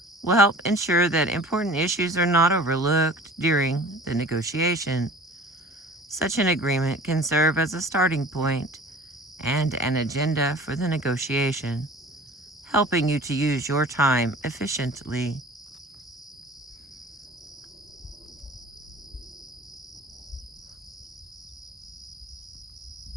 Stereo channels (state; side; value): normal; both; correlation 0.44